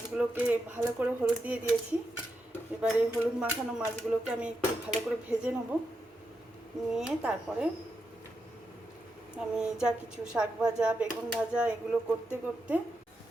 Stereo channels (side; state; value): both; normal; correlation 0.85